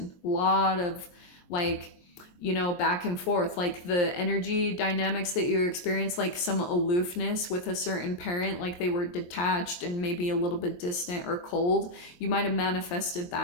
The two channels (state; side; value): late; right; 23 ms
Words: A lot of like, you know, back and forth, like the energy dynamics that you experience, like some aloofness with a certain parent, like they were detached and maybe a little bit distant or cold. You might have manifested